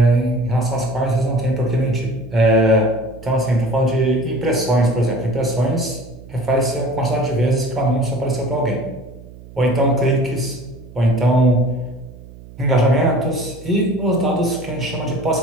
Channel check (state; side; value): noise; right; hum, 19 dB below the sound